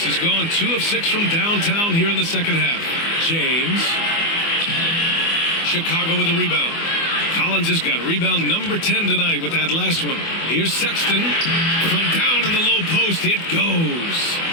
has gone 2 of 6 from downtown here in the second half. James. Chicago with a rebound. Collins has got rebound number 10 tonight with that last one. Here's Sexton. From down in the low post, it goes.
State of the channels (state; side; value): late; right; 24 ms